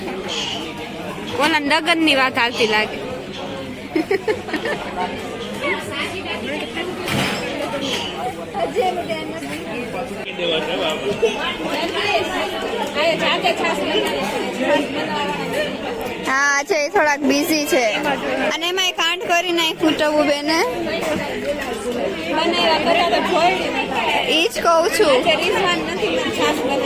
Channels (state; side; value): identical; both; correlation 1.00